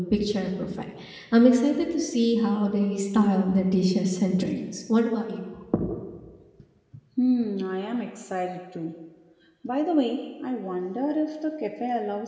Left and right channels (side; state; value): both; identical; correlation 1.00